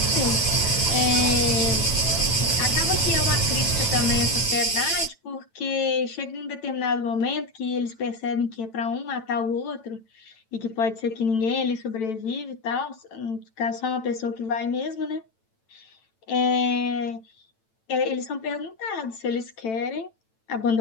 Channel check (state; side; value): late; right; 9.0 ms